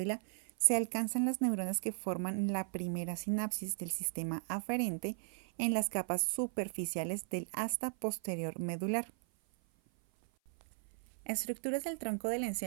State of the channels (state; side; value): silent; left; 53 dB below the other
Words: se alcanzan las neuronas que forman la primera sinapsis del sistema aferente en las capas superficiales del asta posterior medular. Estructuras del tronco del